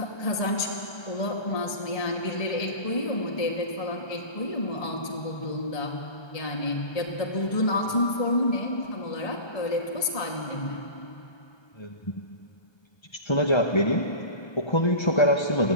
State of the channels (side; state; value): right; late; 1.2 ms